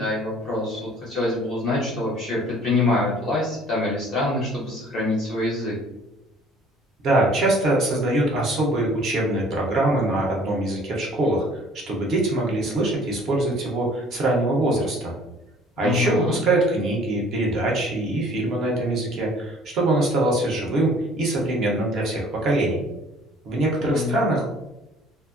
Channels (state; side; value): normal; both; correlation 0.54